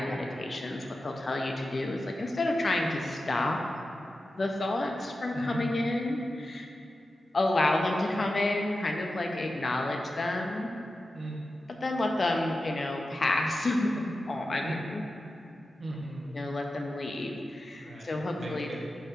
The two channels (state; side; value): normal; both; correlation 0.92